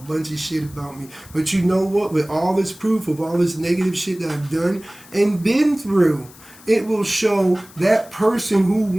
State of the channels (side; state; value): left; noise; hiss, 22 dB below the sound